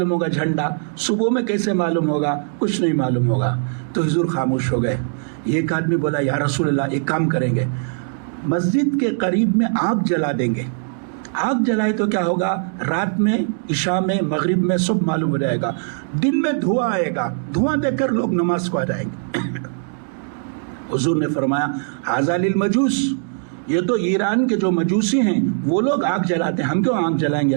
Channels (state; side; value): silent; left; 65 dB below the other